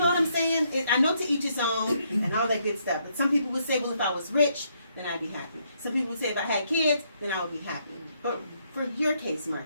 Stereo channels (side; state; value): both; inverted; correlation -0.73